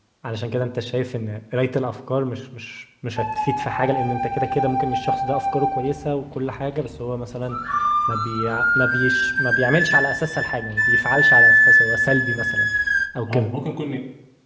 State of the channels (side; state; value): both; identical; correlation 1.00